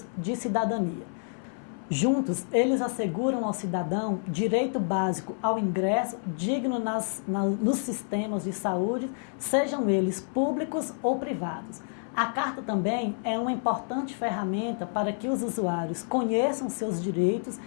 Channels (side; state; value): right; silent; 59 dB below the other